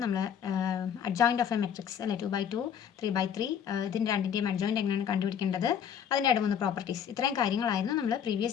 നമ്മൾ അഡ്ജോയിൻറ്റ് ഓഫ് എ മെട്രിക്സ് അല്ലെ 2/2 3/3 ഇതിൻ്റെ രണ്ടിൻ്റെയും അഡ്ജോയിൻറ്റ് എങ്ങനെയാണ് കണ്ടുപിടിക്കേണ്ടത്, അതിൻ്റെ ഇടമുന്ന പ്രോപ്പർട്ടീസ്, ഇത്രയും കാര്യങ്ങളായിരുന്നു നമ്മൾ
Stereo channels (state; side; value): quieter; right; 8.4 dB